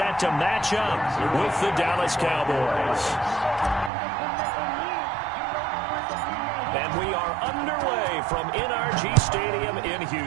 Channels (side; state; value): left; drops out; at 3.9 s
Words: to match up with the Dallas Cowboys. And we are underway from NRG Stadium in